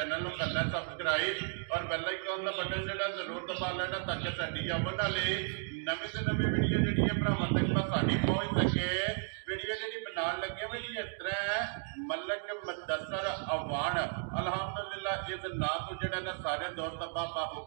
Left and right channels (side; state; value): left; silent; 55 dB below the other